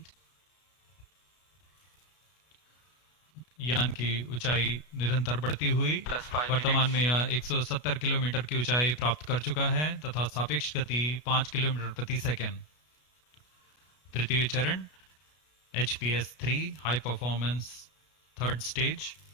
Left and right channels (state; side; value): late; right; 33 ms